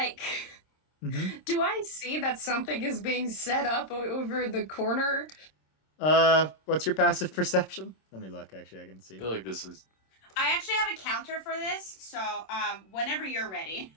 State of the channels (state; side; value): late; right; 26 ms